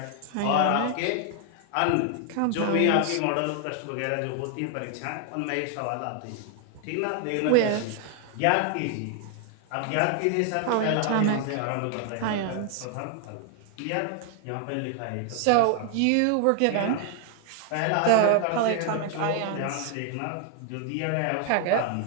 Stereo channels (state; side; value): different; both; correlation 0.00